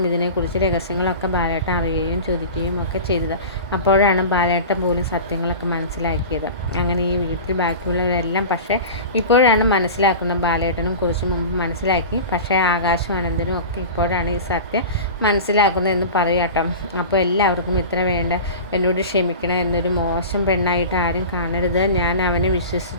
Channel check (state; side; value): inverted; both; correlation -0.33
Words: മിഥുനെക്കുറിച്ച് രഹസ്യങ്ങളൊക്കെ ബാലേട്ടൻ അറിയുകയും ചോദിക്കുകയും ഒക്കെ ചെയ്തത്. അപ്പോഴാണ് ബാലേട്ടൻ പോലും സത്യങ്ങളൊക്കെ മനസ്സിലാക്കിയത്. അങ്ങനെ ഈ വീട്ടിൽ ബാക്കിയുള്ളവരെല്ലാം പക്ഷേ ഇപ്പോഴാണ് മനസ്സിലാക്കുന്നത്. ബാലേട്ടനും കുറച്ച് മുമ്പ് മനസ്സിലാക്കി, പക്ഷേ ആകാശും അനന്തനും ഒക്കെ ഇപ്പോഴാണ് ഈ സത്യം മനസ്സിലാക്കുന്നത് എന്ന് പറയാട്ടോ. അപ്പോൾ എല്ലാവർക്കും ഇത്ര വേണ്ട, എന്നോട് ക്ഷമിക്കണം, എന്നൊരു മോശം പെണ്ണായിട്ട് ആരും കാണരുത്. ഞാൻ അവനെ